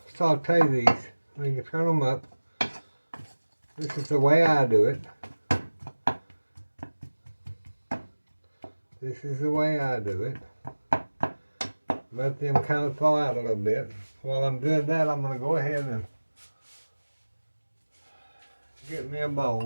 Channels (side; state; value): both; inverted; correlation -1.00